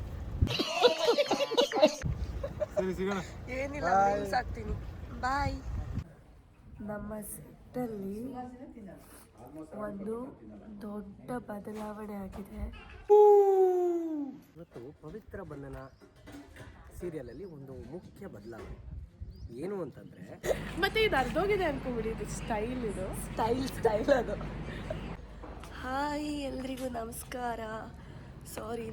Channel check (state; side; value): identical; both; correlation 1.00